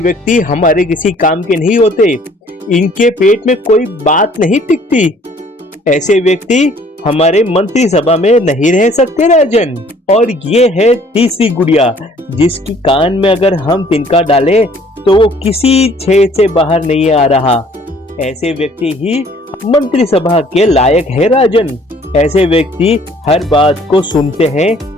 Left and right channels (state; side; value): normal; both; correlation 0.57